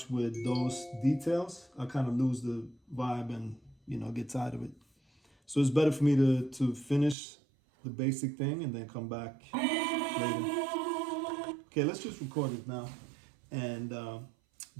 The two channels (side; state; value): left; drops out; at 7.2 s